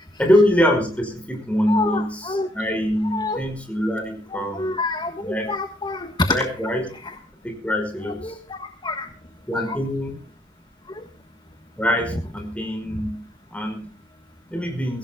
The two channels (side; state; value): both; normal; correlation 0.70